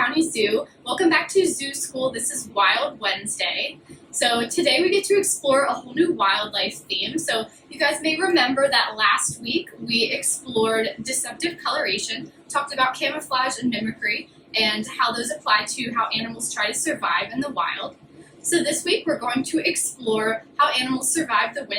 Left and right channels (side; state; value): both; identical; correlation 1.00